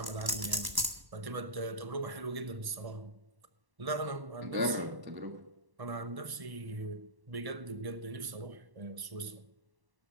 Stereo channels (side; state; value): left; late; 1.0 ms